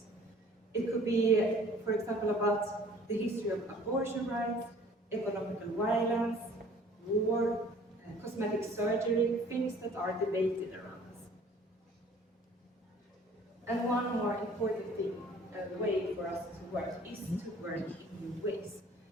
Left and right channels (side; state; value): both; normal; correlation 0.52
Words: It could be, for example, about the history of abortion rights, economical violence, war, cosmetic surgery, things that are debated around us. And one more important thing, way for us to work is to work in new ways.